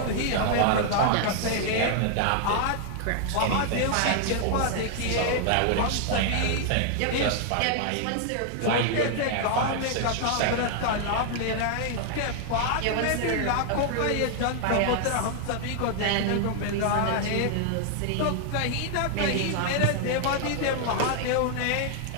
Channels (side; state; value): both; different; correlation 0.00